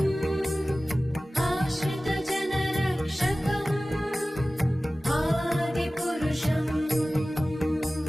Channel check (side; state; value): both; normal; correlation 0.97